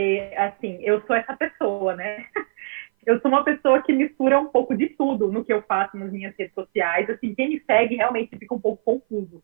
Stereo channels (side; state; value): left; silent; 56 dB below the other